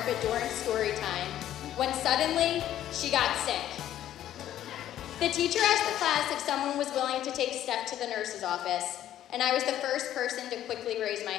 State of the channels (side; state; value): right; quieter; 12.0 dB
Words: during story time, when suddenly, she got sick. The teacher asked the class if someone was willing to take Steph to the nurse's office, and I was the first person to quickly raise my